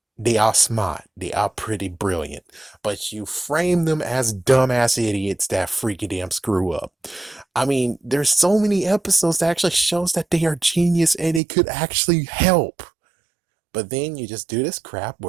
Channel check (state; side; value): drops out; left; at 11.4 s